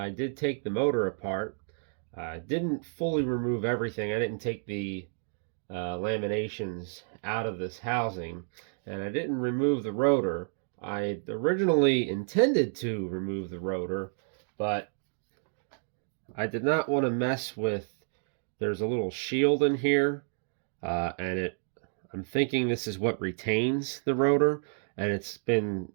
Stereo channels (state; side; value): silent; left; digital silence